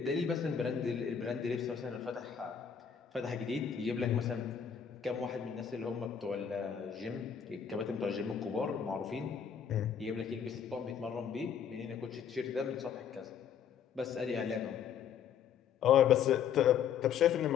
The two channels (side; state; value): right; quieter; 7.8 dB